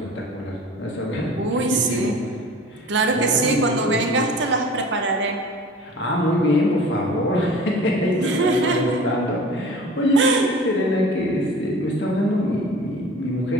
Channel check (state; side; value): normal; both; correlation 0.42